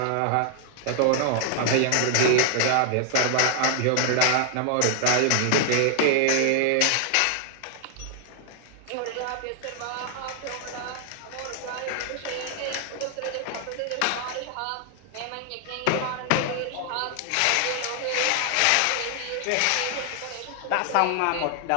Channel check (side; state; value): both; different; correlation 0.00